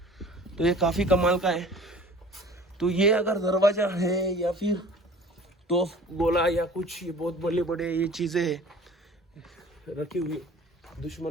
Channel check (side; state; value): both; normal; correlation 0.45